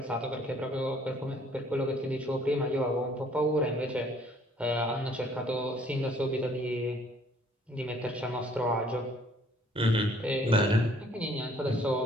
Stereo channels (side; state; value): both; normal; correlation 0.60